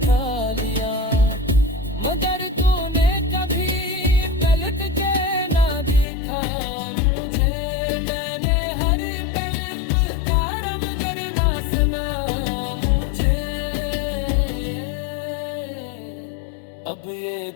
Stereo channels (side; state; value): right; drops out; at 6.1 s